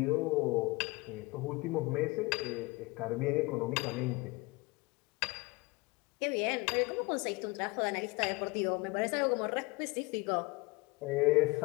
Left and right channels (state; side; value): quieter; right; 24.5 dB